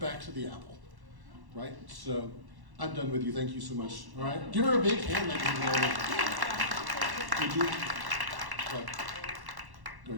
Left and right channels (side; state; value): left; late; 1.1 ms